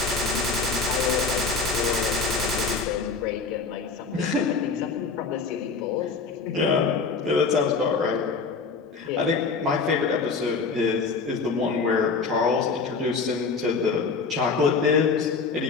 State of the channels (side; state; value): right; quieter; 4.7 dB